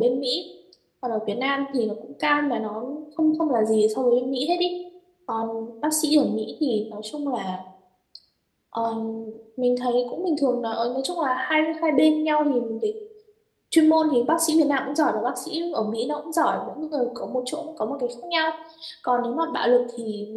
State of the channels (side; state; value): both; identical; correlation 1.00